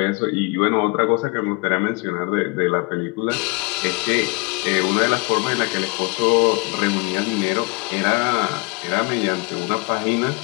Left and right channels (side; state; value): right; quieter; 28.4 dB